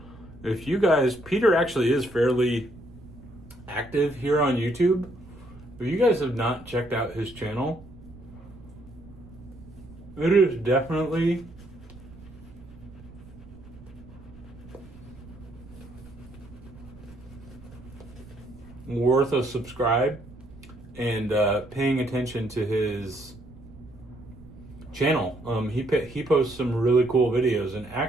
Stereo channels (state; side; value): noise; right; rumble, 19 dB below the sound